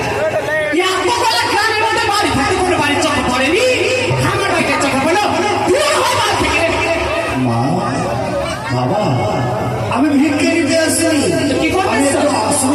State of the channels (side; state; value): both; identical; correlation 1.00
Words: গ্রামের মধ্যে বাড়ি থাকে, কোনো বাড়ির চোখে পড়েনি। আমার বাড়িতে চোখে পড়লো। মা, বাবা, আমি ভিক্ষে নিতে আসিনি। কি করবে?